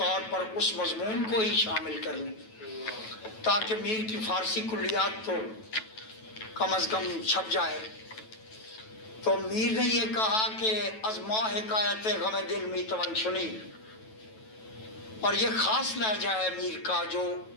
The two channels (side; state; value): right; late; 9.2 ms